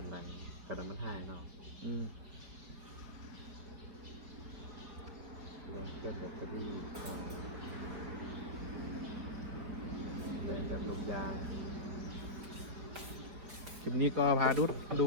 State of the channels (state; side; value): late; left; 4.6 ms